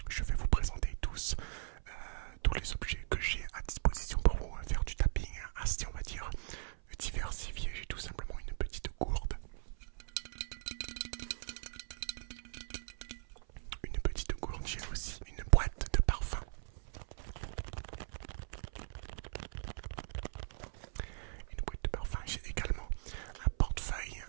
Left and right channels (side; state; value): left; silent; 52 dB below the other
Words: je vais vous présenter tous les objets que j'ai à disposition pour vous faire du tapping assez, on va dire, diversifié. J'ai tout simplement une petite gourde. J'ai aussi une boîte de parfum. J'ai également un portefeuille.